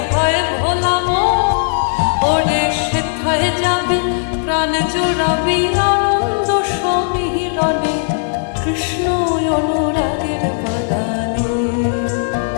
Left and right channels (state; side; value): silent; right; digital silence